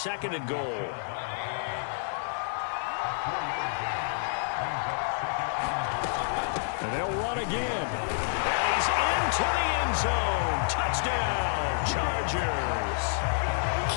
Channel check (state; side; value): silent; right; digital silence